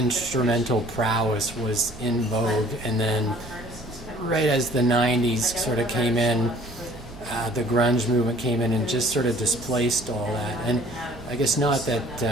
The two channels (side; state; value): right; noise; hum, 21 dB below the sound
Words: prowess was in vogue, and then right as the '90s sort of came in, the grunge movement came in and just sort of displaced all that. And I guess not that